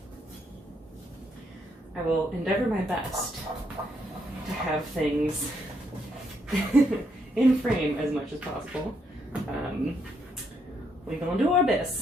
I will endeavor my best to have things in frame as much as possible. We're gonna do our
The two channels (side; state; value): both; normal; correlation 0.75